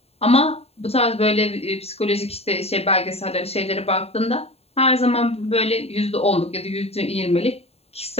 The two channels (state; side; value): late; right; 0.29 ms